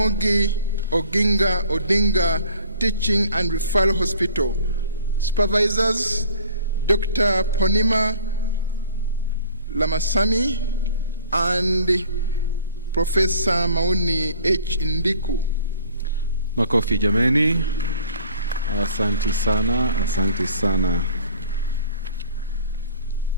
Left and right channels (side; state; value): both; inverted; correlation -0.50